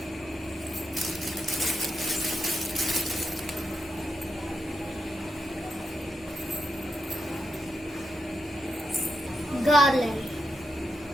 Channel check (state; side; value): normal; both; correlation 0.85